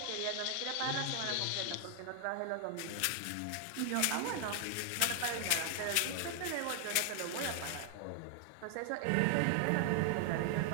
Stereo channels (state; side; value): different; both; correlation 0.00